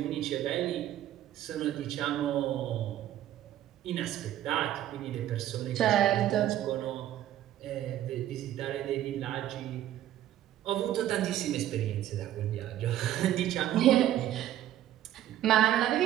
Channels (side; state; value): left; quieter; 12.5 dB